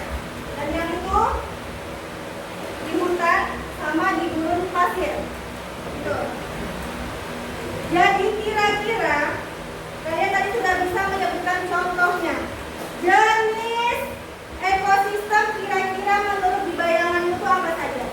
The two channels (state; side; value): identical; both; correlation 1.00